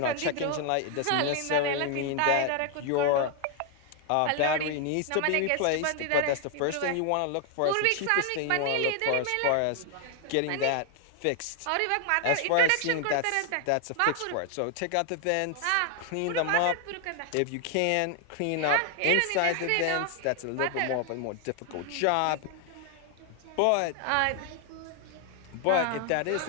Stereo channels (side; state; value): both; different; correlation 0.00